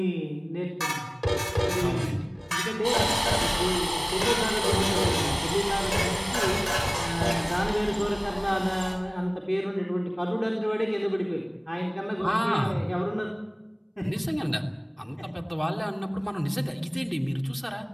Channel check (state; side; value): identical; both; correlation 1.00